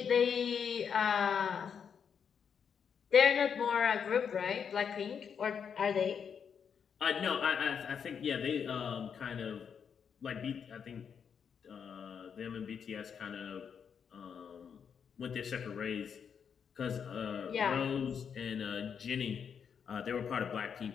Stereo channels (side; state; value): right; quieter; 7.1 dB